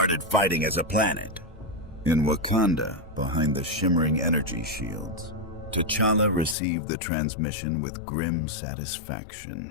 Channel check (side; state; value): right; drops out; at 6.6 s